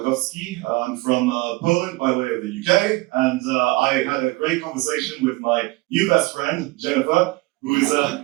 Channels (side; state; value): left; quieter; 21.8 dB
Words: I'm from Poland by way of the UK, and I had a great conversation with my new best friend, Jennifer, who is